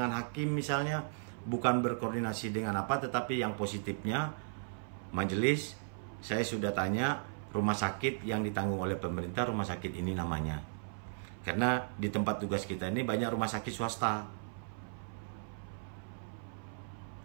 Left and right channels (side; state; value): left; silent; 54 dB below the other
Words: hakim misalnya, bukan berkoordinasi dengan apa, tetapi yang positifnya, majelis, saya sudah tanya rumah sakit yang ditanggung oleh pemerintah, rumah sakit ini namanya. Karena di tempat tugas kita ini banyak rumah sakit swasta.